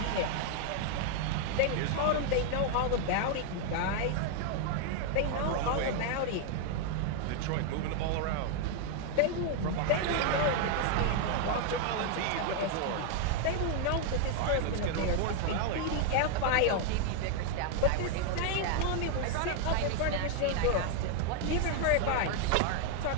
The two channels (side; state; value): both; different; correlation 0.00